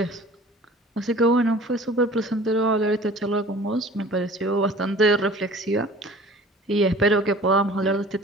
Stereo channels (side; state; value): both; normal; correlation 0.46